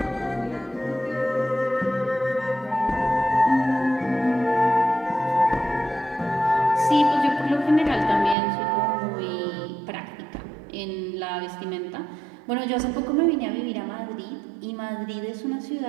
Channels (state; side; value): drops out; left; at 8.3 s